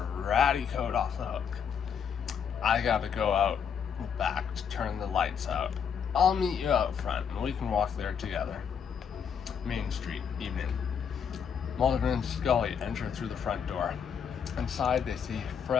ratty coat off the hook. I gotta go out back to turn the lights out. I'll meet you out front, and we can walk there together. Main Street, evening. Mulder and Scully enter through the front door. Inside, they see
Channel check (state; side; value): quieter; right; 7.3 dB